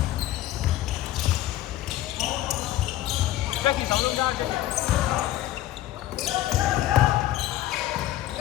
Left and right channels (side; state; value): right; quieter; 14.5 dB